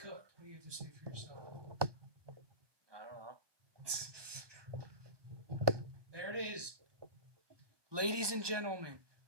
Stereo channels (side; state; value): left; late; 1.2 ms